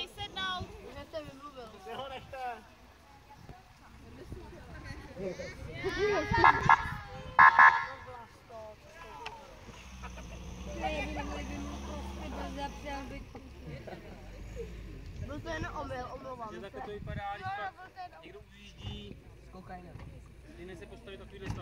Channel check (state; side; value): identical; both; correlation 1.00